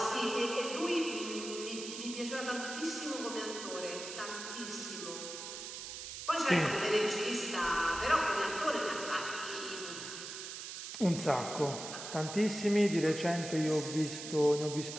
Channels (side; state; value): right; noise; hiss, 8 dB below the sound